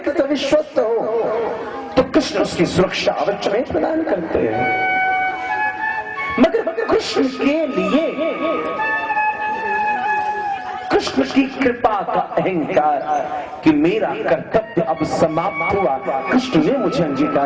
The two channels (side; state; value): both; identical; correlation 1.00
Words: से विश्वस्त हो तो कृष्ण उसकी सुरक्षा अवश्य में प्रदान करते हैं, मगर कृष्ण के लिए कृष्ण की कृपा का अहंकार कि मेरा कर्तव्य अब समाप्त हुआ, कृष्ण ने मुझे